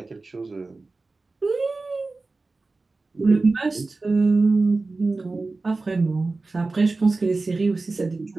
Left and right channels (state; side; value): quieter; left; 3.5 dB